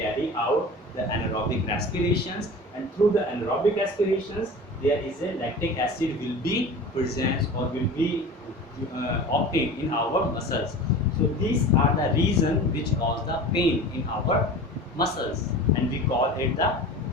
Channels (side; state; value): both; normal; correlation 0.36